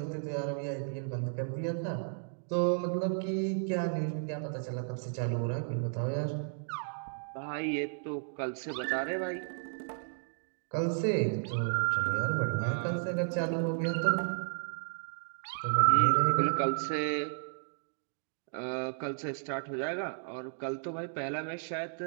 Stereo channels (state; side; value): silent; left; digital silence